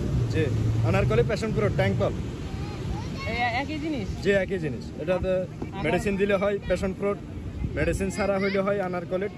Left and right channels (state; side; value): identical; both; correlation 1.00